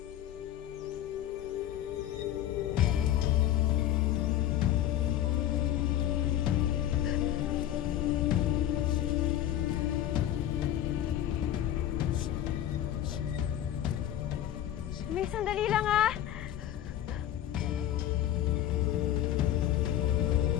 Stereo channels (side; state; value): right; quieter; 11.9 dB